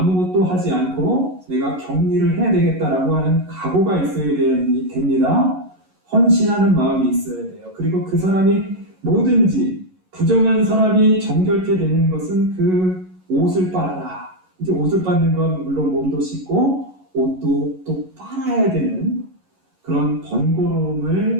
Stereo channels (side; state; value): left; late; 11 ms